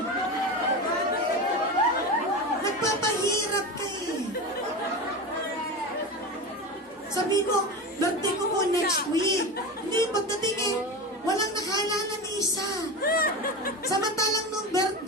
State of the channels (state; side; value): normal; both; correlation 0.24